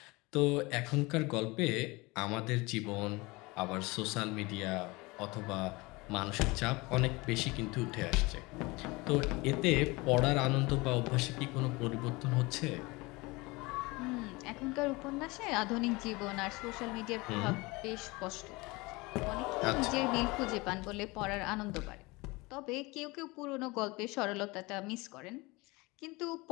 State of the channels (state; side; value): quieter; right; 23.9 dB